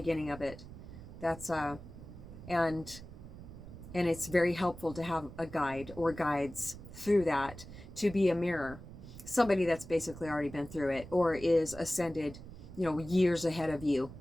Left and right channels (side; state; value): right; noise; rumble, 14 dB below the sound